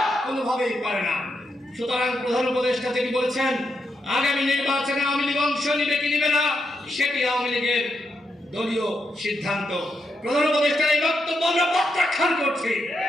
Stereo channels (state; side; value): normal; both; correlation 0.82